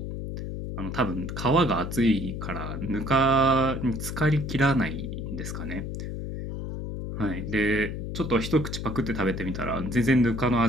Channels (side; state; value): left; noise; hum, 5 dB below the sound